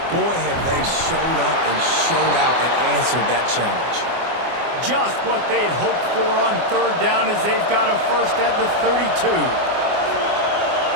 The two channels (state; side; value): late; left; 24 ms